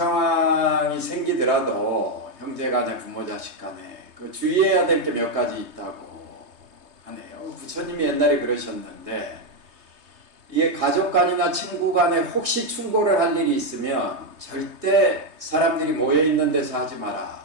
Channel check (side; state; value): left; late; 3.2 ms